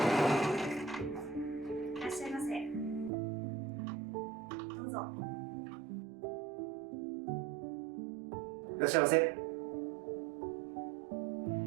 らっしゃいませ。どうぞ。いらっしゃいませ。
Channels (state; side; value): drops out; left; at 3.1 s